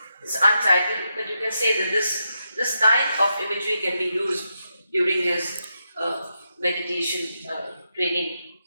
It's untitled, but you can say that this kind of imagery can be used during his meditation training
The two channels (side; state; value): both; inverted; correlation -0.85